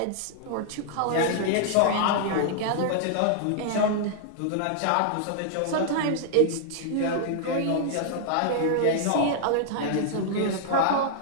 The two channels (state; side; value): different; both; correlation -0.01